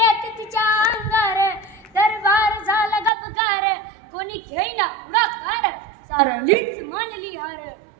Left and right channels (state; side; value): drops out; left; at 3.1 s